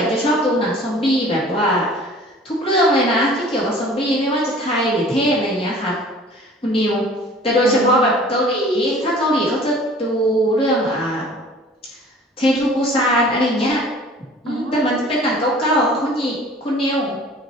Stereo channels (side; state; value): both; normal; correlation 0.48